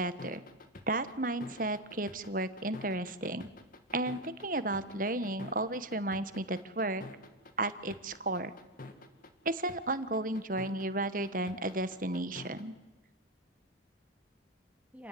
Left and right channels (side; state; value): both; normal; correlation 0.10